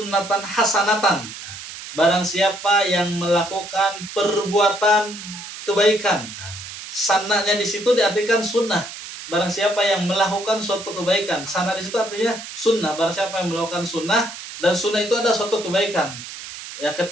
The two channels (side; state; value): right; noise; hiss, 12 dB below the sound